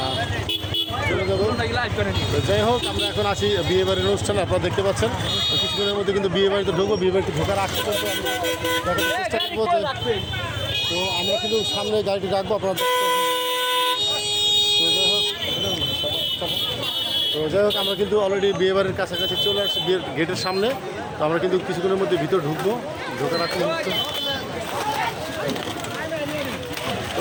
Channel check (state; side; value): identical; both; correlation 1.00